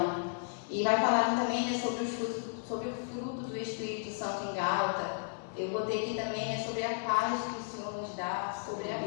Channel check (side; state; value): right; silent; digital silence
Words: E vai falar também, né, sobre o fruto do Espírito Santo em Gálatas. Eu botei aqui também, né, sobre a paz que o Senhor nos dá, sobre a